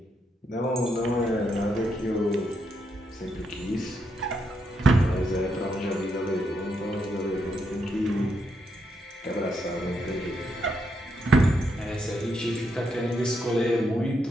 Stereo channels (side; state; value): both; normal; correlation 0.80